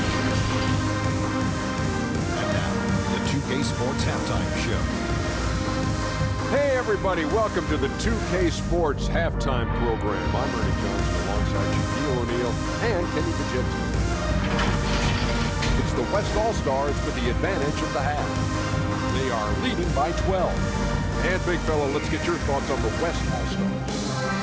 now, the 2K Sports Halftime Show. Hey everybody, welcome to the 2K Sports Halftime Program. I'm Ernie Johnson alongside Shaquille O'Neal and Kenny Bajinski. It's the West All-Stars with the advantage of the half. They are leading by 12. And big fella, let's get your thoughts on the West All-Stars.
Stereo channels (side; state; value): both; identical; correlation 1.00